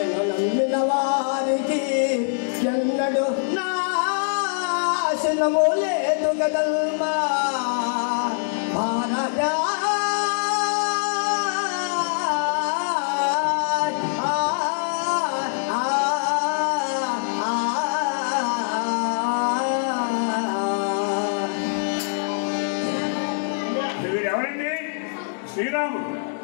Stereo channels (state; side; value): silent; right; 63 dB below the other